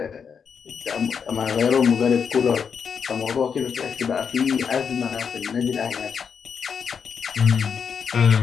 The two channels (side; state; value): right; quieter; 6.6 dB